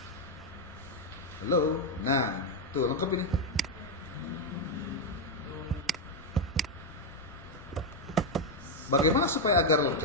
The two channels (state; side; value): normal; both; correlation 0.03